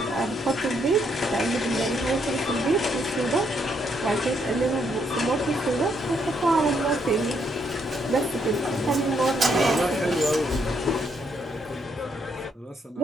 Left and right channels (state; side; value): normal; both; correlation 0.74